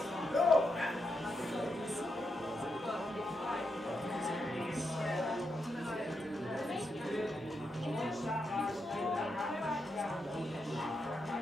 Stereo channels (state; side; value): normal; both; correlation 0.83